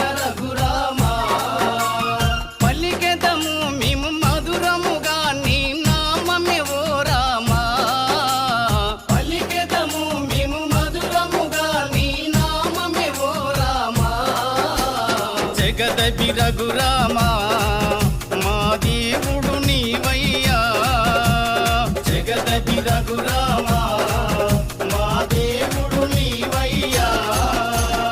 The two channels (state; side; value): identical; both; correlation 1.00